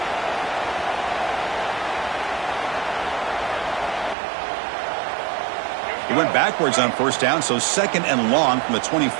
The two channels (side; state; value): left; drops out; at 4.2 s